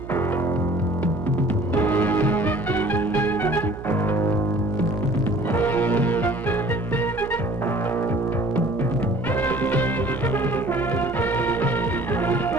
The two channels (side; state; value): right; noise; hum, 12 dB below the sound